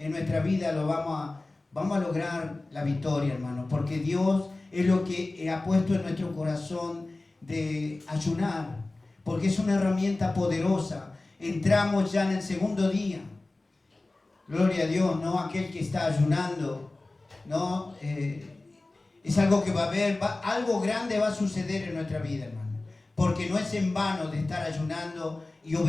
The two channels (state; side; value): quieter; right; 3.0 dB